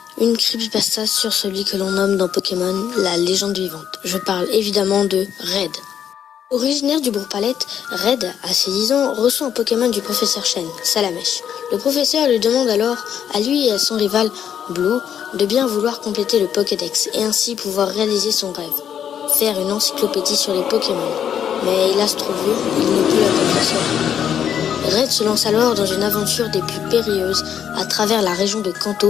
une creepypasta sur celui que l'on nomme dans Pokémon la légende vivante. Je parle évidemment de Red. Originaire du Bourg-Palette, Red, à ses 10 ans, reçoit un Pokémon du professeur Chen, Salamèche. Le professeur lui demande alors, à lui et à son rival, Blue, de bien vouloir compléter le Pokédex et ainsi pouvoir réaliser son rêve, faire une encyclopédie sur les Pokémon. Mais hélas trop vieux, il ne peut l'accomplir seul. Red se lance alors dans une aventure des plus périlleuses à travers la région de Kanto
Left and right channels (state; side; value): quieter; right; 8.9 dB